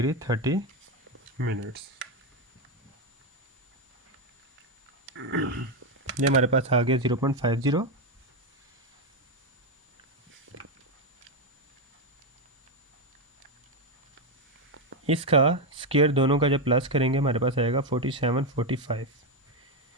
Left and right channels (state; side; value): normal; both; correlation 0.07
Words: 30 minutes. ये हमारे पास आ गया 0.50। इसका स्क्वायर दोनों का जब प्लस करेंगे हमारे पास आएगा 4745